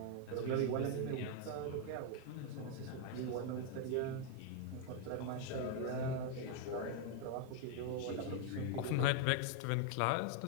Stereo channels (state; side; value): different; both; correlation 0.00